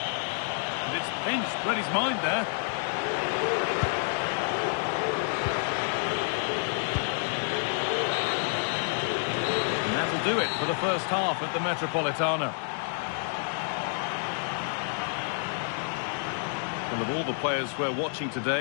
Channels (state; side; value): silent; right; digital silence